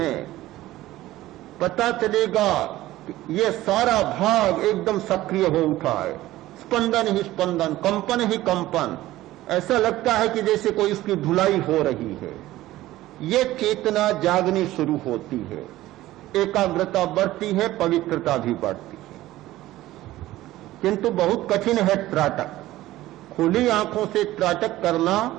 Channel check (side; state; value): left; quieter; 16.0 dB